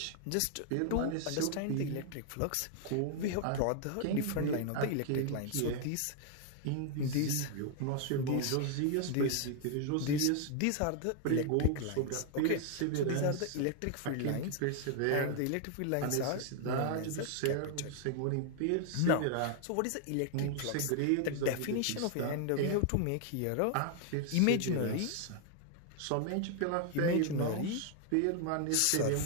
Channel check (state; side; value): different; both; correlation 0.00